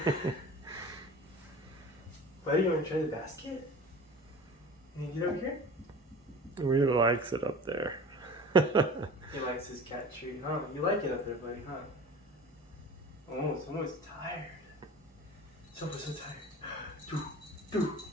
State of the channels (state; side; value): normal; both; correlation 0.39